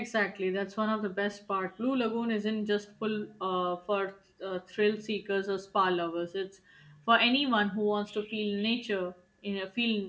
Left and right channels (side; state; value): both; identical; correlation 1.00